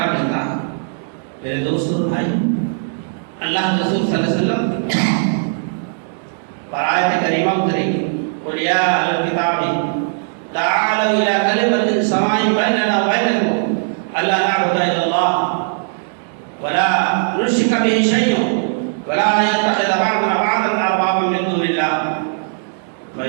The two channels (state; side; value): silent; left; digital silence